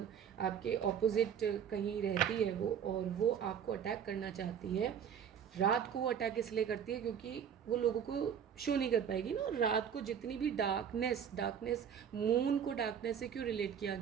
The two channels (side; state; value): left; quieter; 8.2 dB